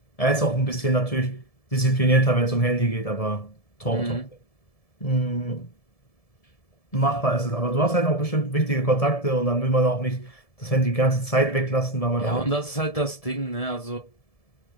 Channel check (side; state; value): right; late; 1.7 ms